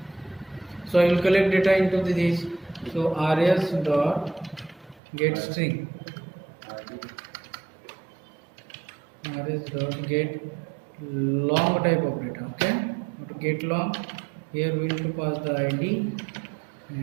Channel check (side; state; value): left; drops out; at 5.0 s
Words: so I will collect data into this. So rs dot get string, rs dot get long type of data. Okay, to get long, here we will to pass the id